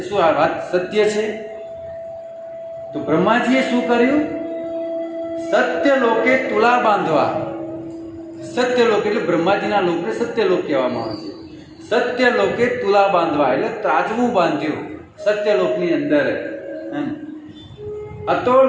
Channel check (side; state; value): both; identical; correlation 1.00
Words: શું આ વાત સત્ય છે. તો બ્રહ્માજીએ શું કર્યું? સત્ય લોકે તુલા બાંધવા. સત્ય લોક એટલે બ્રહ્માજીના લોકને સત્ય લોક કહેવામાં આવે છે. સત્ય લોકે તુલા બાંધવા એટલે ત્રાજવું બાંધ્યું સત્ય લોકની અંદર.